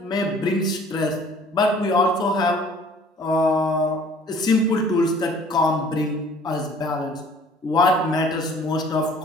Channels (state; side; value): normal; both; correlation 0.53